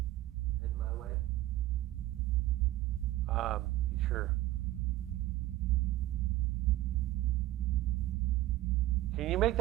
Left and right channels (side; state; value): left; quieter; 15.7 dB